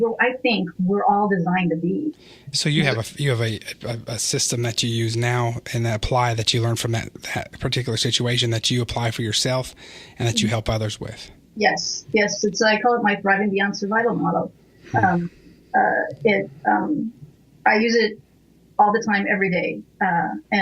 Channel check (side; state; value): both; identical; correlation 1.00